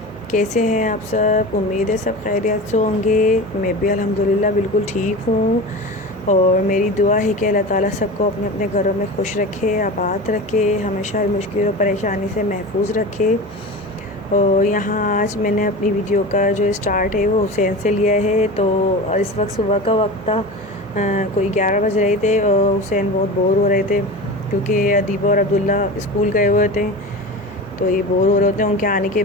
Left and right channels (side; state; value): both; normal; correlation 0.30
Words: कैसे हैं आप सब? उम्मीद है सब खैरियत से होंगे। मैं भी अल्हम्दुलिल्लाह बिल्कुल ठीक हूँ और मेरी दुआ है कि अल्लाह ताला सबको अपने अपने घरों में खुश रखे, आबाद रखे, हमेशा मुश्किल और परेशानी से महफूज रखे। और यहाँ आज मैंने अपनी वीडियो का जो स्टार्ट है वो हुसैन से लिया है। तो इस वक्त सुबह का वक्त था, कोई 11 बज रहे थे। हुसैन बहुत बोर हो रहे थे क्योंकि अदीबा और अब्दुल्ला स्कूल गए हुए थे, तो ये बोर हो रहे होते हैं। उनके आने के